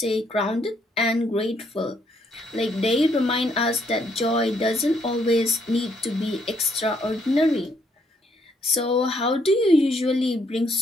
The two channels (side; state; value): both; normal; correlation 0.71